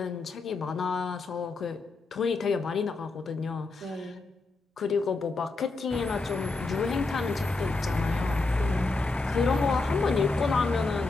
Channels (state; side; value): quieter; right; 3.6 dB